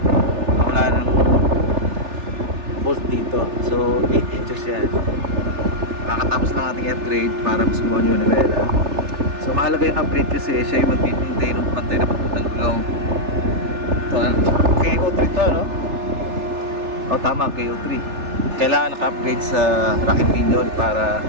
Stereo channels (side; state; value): left; late; 3.4 ms